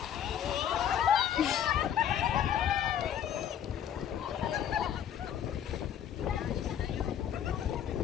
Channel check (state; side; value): quieter; right; 9.6 dB